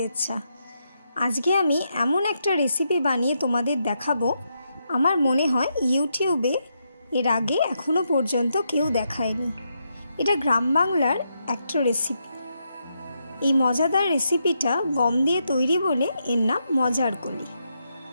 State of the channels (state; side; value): inverted; both; correlation -0.82